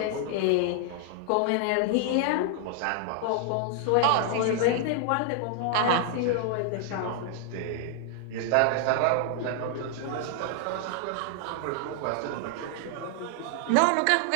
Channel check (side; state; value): both; different; correlation 0.00